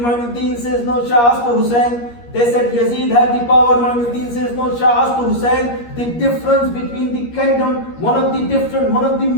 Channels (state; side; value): late; right; 13 ms